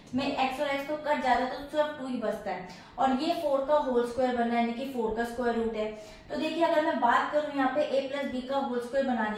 में x और x तो कट जाता है तो सिर्फ 2 ही बचता है, और ये 4 का होल स्क्वायर बना है, यानी कि 4 का स्क्वायर रूट है। तो देखिए अगर मैं बात करूं यहाँ पे a प्लस बी का होल स्क्वायर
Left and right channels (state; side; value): identical; both; correlation 1.00